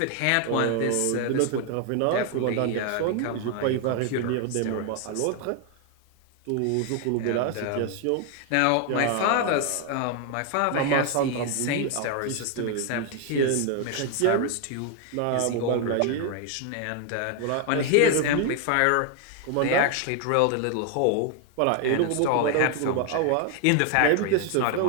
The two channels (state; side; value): different; both; correlation 0.01